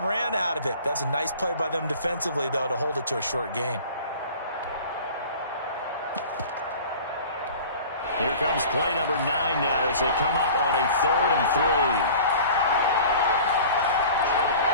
out of it. That's a nice play by them defensively, though, to hold it to a short gain. Here comes play number 9 now as they come up on a 3rd and 3.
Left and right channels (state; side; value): inverted; both; correlation -0.43